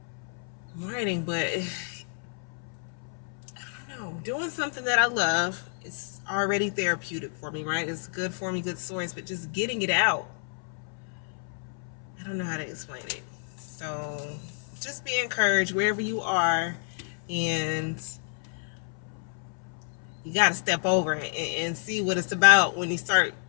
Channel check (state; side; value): silent; right; 58 dB below the other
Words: I'm writing, but I don't know. Doing something that I love is already therapeutic for me, right? It's good for me, good stories, but just getting it out, I don't know how to explain it. So just be encouraged wherever you are, and you got to step over and see what it's about when you start